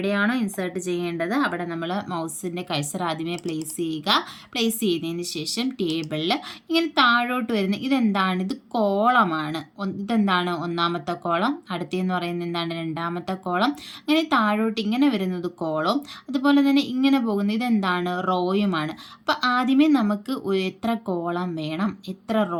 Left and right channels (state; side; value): identical; both; correlation 1.00